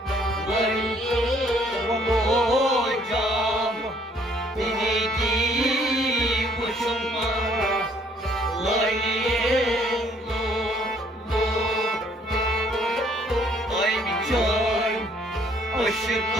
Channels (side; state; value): both; normal; correlation 0.63